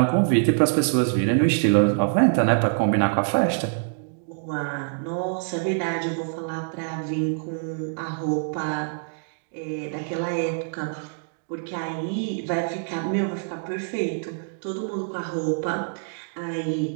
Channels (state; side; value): silent; left; digital silence